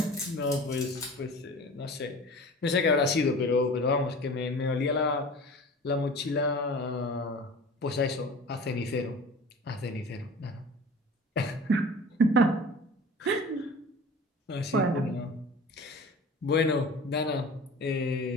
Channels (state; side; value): normal; both; correlation 0.40